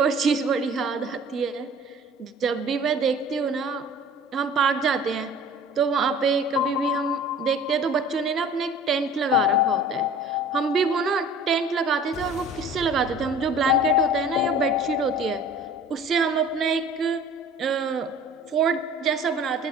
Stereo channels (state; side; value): normal; both; correlation 0.45